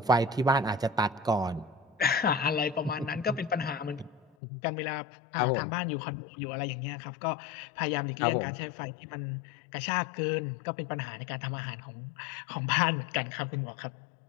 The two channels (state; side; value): drops out; right; at 4.2 s